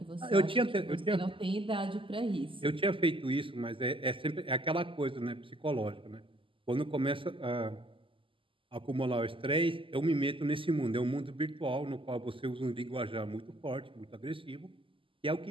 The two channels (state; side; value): late; left; 0.25 ms